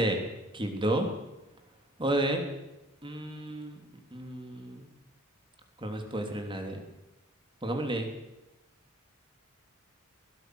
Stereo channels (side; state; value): both; normal; correlation 0.56